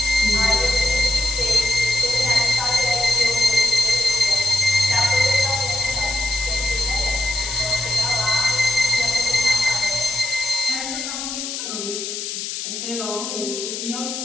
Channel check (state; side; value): noise; left; hiss, 5 dB below the sound